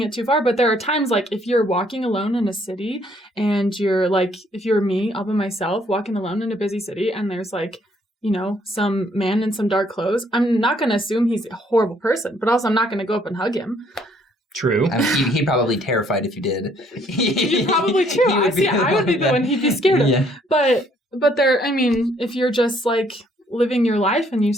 it too far, but there are times if you're walking alone in a city and you're if you're me, all by myself, walking alone in a busy city, and there's some man in some dark clothes, I'm not going to assume he's a horrible person, but also I'm not going to go up and hug him. True. He'd probably be terrified if you did. You're probably true. I would be the one he'd be scared of. Yeah. But there, if you're just living your life and you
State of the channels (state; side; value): normal; both; correlation 0.65